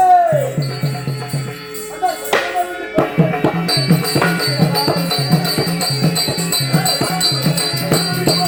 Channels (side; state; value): both; identical; correlation 1.00